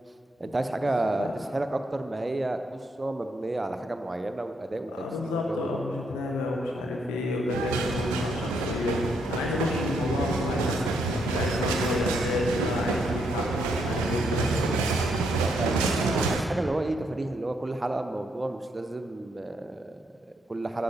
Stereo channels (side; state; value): both; normal; correlation 0.76